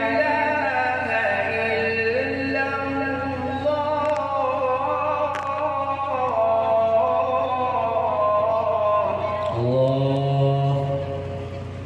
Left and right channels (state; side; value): identical; both; correlation 1.00